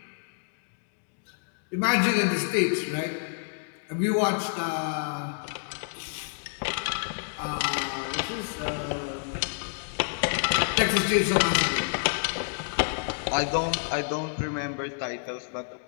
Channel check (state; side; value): silent; right; digital silence